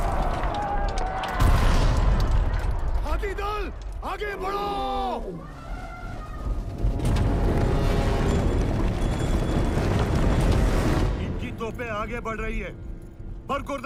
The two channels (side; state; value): both; identical; correlation 1.00